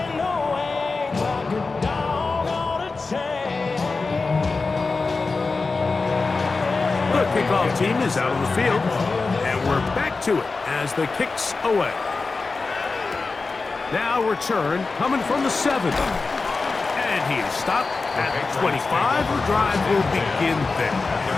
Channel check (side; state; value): right; quieter; 4.0 dB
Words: The kickoff team is out on the field. We're back to it as the kick's away. Now return coming from the 7. And he is stopped at 25. The drive will begin there.